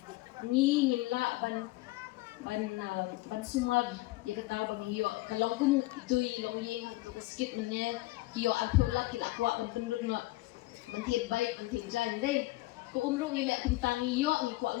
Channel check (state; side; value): quieter; right; 20.1 dB